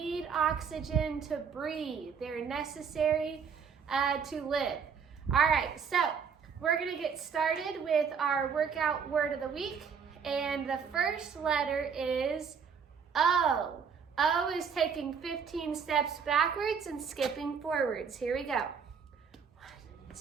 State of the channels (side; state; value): left; quieter; 6.5 dB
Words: oxygen to breathe. They're necessary to live. All right, so we're gonna get started with our workout word of the week. And the first letter is O. O is taking 15 steps backwards and skipping forwards. Here we go. 1,